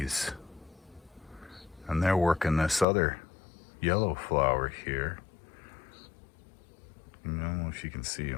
And they're working this other yellow flower here. I don't know if you can see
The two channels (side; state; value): right; drops out; at 2.9 s